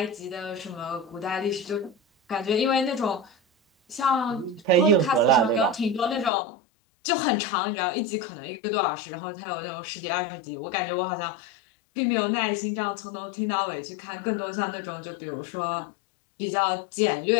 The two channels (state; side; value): drops out; right; at 6.3 s